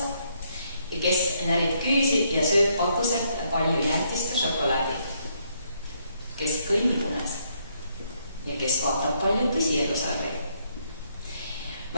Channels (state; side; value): inverted; both; correlation -0.73